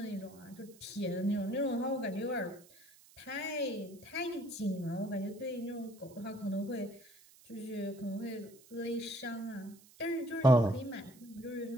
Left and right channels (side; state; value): right; noise; hiss, 24 dB below the sound